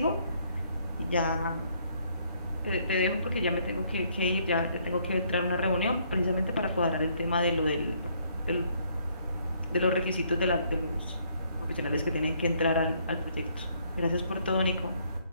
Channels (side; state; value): both; inverted; correlation -0.67